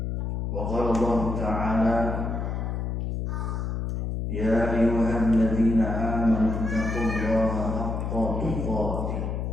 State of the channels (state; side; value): noise; left; hum, 2 dB below the sound